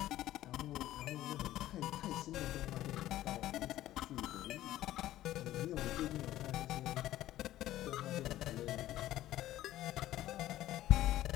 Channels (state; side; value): quieter; right; 14.2 dB